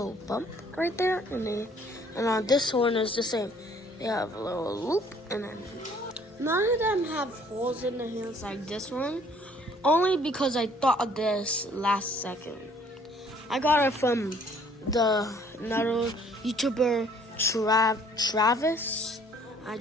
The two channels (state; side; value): normal; both; correlation 0.58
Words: bump right there, and on this horn is the same. They have a little loop, and then none of them have holes in the hands like this one. Only because I thought of this last second. I got it from another YouTuber, Travis. I